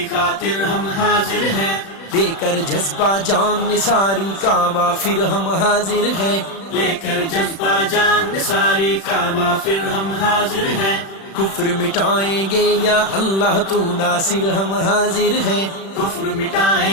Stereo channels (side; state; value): right; late; 36 ms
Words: خاطر ہم حاضر ہیں، دے کر جذبہ جان نثاری کعبہ پھر ہم حاضر ہیں، لے کر جذبہ جان نثاری کعبہ پھر ہم حاضر ہیں، کفر مٹائیں گے یا اللہ تو ناصر ہم حاضر ہیں، کفر